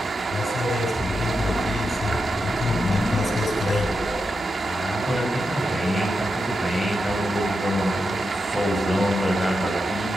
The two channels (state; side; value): normal; both; correlation 0.87